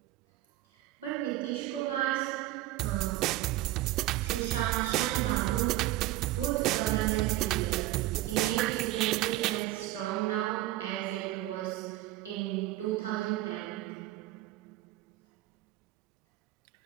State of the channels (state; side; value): quieter; left; 15.8 dB